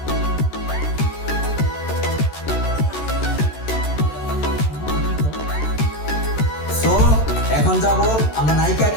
সো এখন যাব আমরা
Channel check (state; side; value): late; right; 13 ms